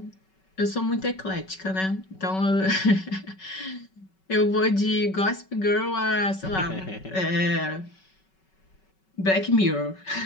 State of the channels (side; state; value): right; late; 5.3 ms